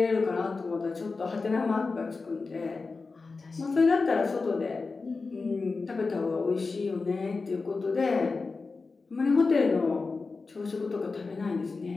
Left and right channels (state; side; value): quieter; right; 4.1 dB